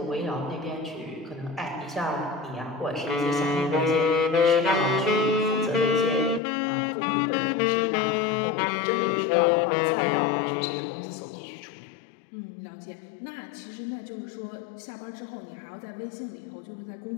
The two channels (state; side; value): drops out; right; at 6.4 s